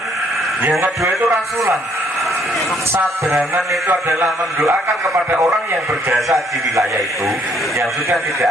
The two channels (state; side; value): normal; both; correlation 0.66